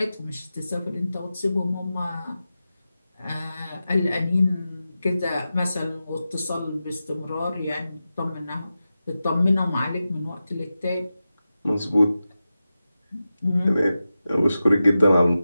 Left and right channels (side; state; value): both; inverted; correlation -0.93